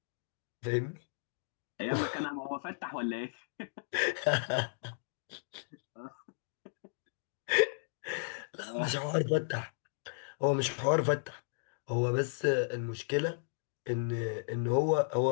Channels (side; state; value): right; silent; digital silence